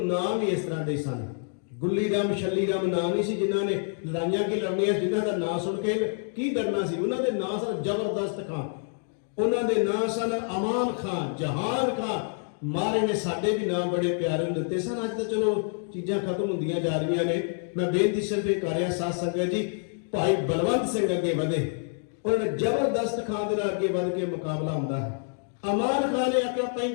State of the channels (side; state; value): right; silent; 58 dB below the other